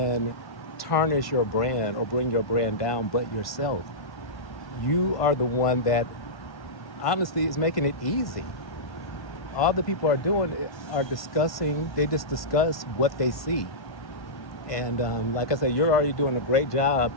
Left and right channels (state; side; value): late; right; 1.2 ms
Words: tarnish your brand or bring your brand down but yourself. You are the one that honestly is making it easy. All the people are doing are discussing, they just discuss what they see. And like I said, you're already doing a great job